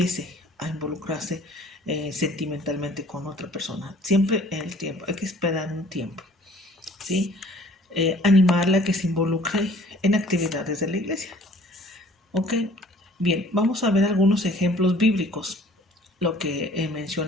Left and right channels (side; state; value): both; normal; correlation 0.53